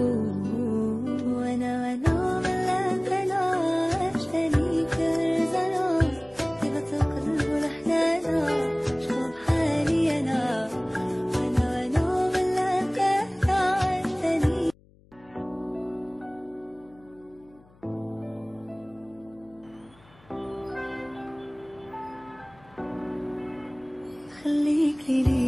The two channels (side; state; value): left; noise; hum, 28 dB below the sound